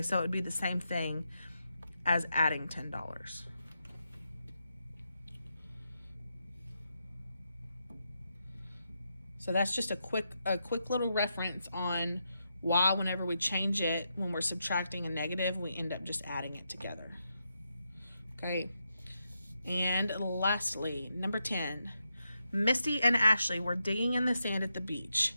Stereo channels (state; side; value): inverted; both; correlation -0.84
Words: so it would be the same thing as adding $10. So that's just a quick little reference on why whenever we change it, when we're subtracting a negative, we end up just adding it together. Okay. And lastly, number 10, Misty and Ashley were digging in the sand at the beach.